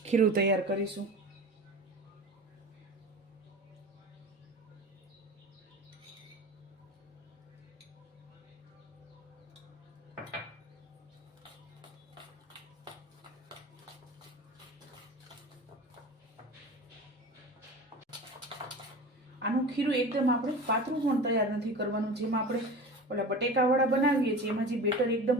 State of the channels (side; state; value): both; normal; correlation 0.34